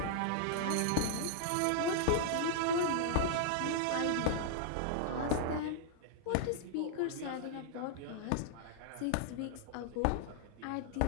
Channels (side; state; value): both; different; correlation 0.00